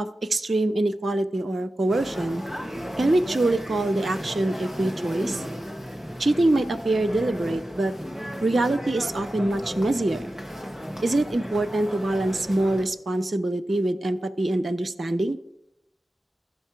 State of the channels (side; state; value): both; normal; correlation 0.93